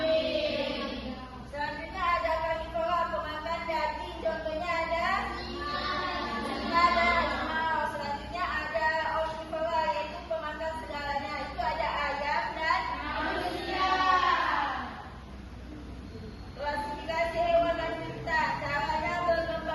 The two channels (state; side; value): identical; both; correlation 1.00